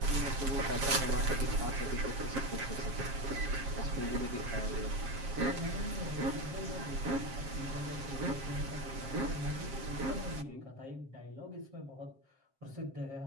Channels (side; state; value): left; late; 7.6 ms